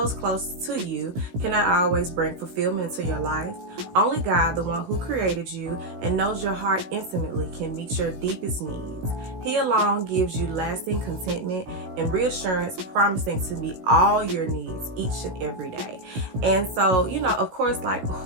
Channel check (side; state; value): left; late; 17 ms